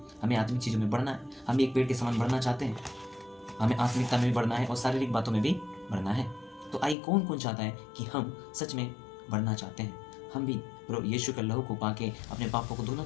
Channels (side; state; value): right; drops out; at 7.0 s